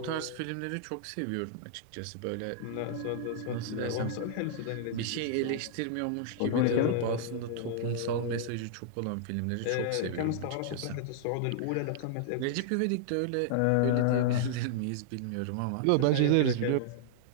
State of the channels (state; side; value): different; both; correlation -0.01